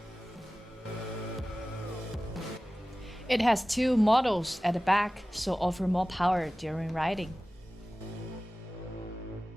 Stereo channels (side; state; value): both; normal; correlation 0.96